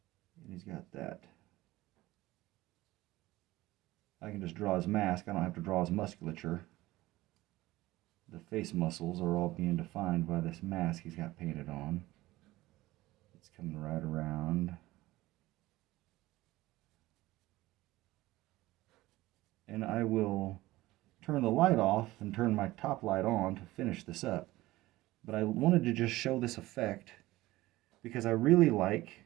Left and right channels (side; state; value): left; quieter; 17.9 dB